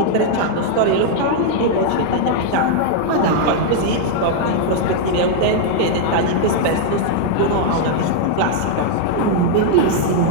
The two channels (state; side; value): different; both; correlation -0.01